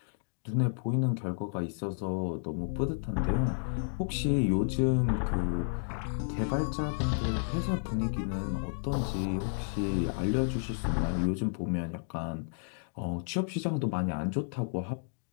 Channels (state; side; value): silent; right; digital silence